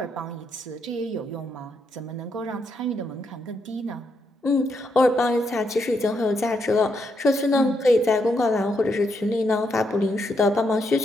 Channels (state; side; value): normal; both; correlation 0.79